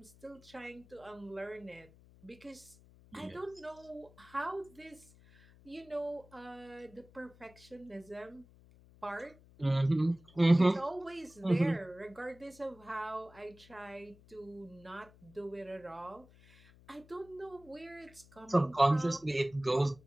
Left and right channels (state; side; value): noise; left; hum, 24 dB below the sound